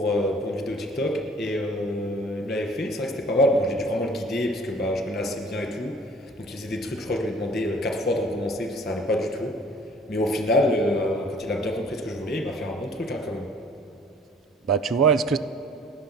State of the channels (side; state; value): both; normal; correlation 0.53